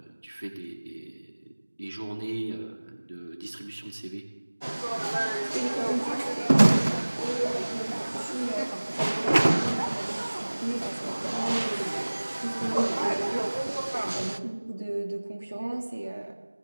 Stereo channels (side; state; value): both; inverted; correlation -1.00